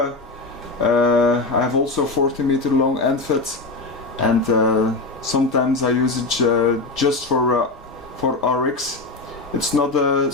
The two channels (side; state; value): right; quieter; 3.4 dB